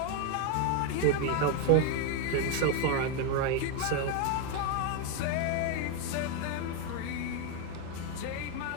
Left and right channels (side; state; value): both; different; correlation 0.01